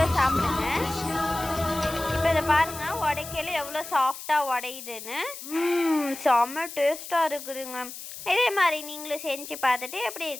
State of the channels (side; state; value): left; noise; hiss, 11 dB below the sound